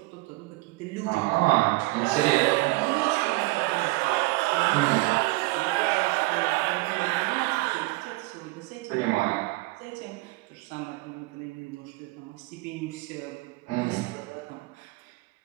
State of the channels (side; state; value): left; quieter; 22.0 dB